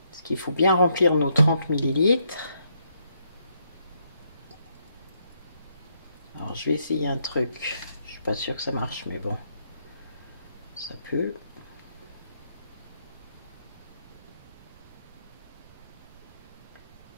Parce qu'il faut bien remplir nos 30 millilitres. Alors je vais essayer un truc. Je suis pas sûre que ça marche, mais bon. Ça peut.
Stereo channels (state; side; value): inverted; both; correlation -0.75